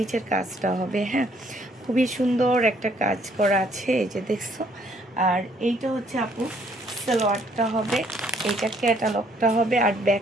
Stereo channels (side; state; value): both; normal; correlation 0.65